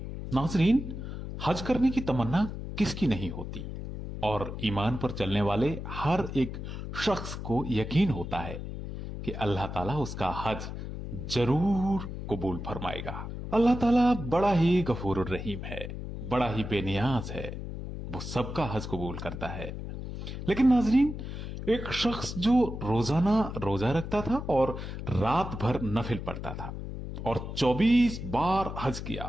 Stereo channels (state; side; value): noise; left; hum, 7 dB below the sound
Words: नाजरीन, हज करने की तमन्ना किसकी नहीं होती और ईमान पर चलने वाले हर एक शख्स को यकीन होता है कि अल्लाह ताला उसका हज जरूर कबूल फरमाएगा। अल्लाह ताला बड़ा ही गफूर रहीम है, बड़ा ही बेनियाज है, वो सबका हज कबूल करता है। लेकिन नाजरीन, एक शख्स जो रोजाना रोजा रखता था और रात भर नफिल पढ़ता था और 24 बार हज